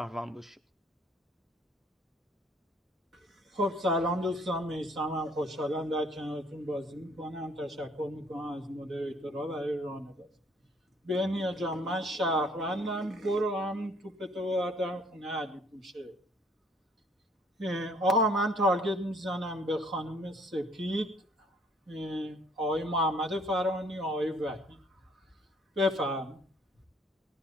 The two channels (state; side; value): normal; both; correlation 0.60